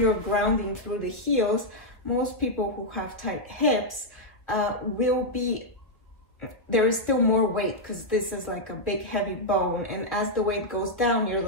grounding through the heels, most people who have tight hips will be, there is still more weight because this is like a big heavy bone, and as the weight goes down, you're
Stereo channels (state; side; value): late; right; 1.5 ms